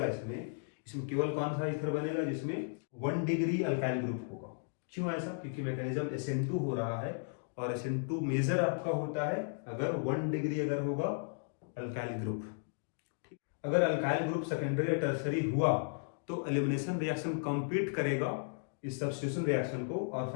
इसमें केवल कौन सा ईथर बनेगा, जिसमें 1 डिग्री अल्काइल ग्रुप होगा। क्यों ऐसा, क्योंकि मैकेनिज्म SN2 हो रहा है और SN2 मेजर आपका होता है अगर 1 डिग्री अगर होगा अल्काइल ग्रुप। अगर अल्काइल ग्रुप सेकेंडरी या टर्सरी हुआ तो एलिमिनेशन रिएक्शन कंप्लीट करेगा इस सब्स्टिट्यूशन रिएक्शन को, और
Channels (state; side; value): silent; right; digital silence